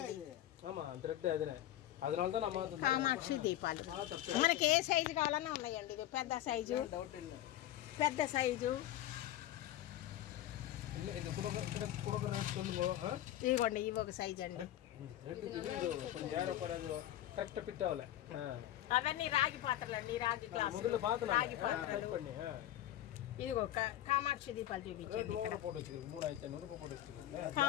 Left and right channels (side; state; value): right; quieter; 13.2 dB